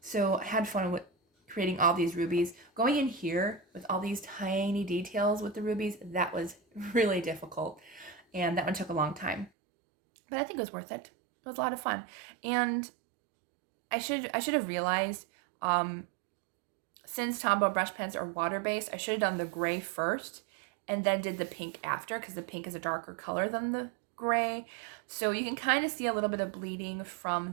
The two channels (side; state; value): left; drops out; at 9.5 s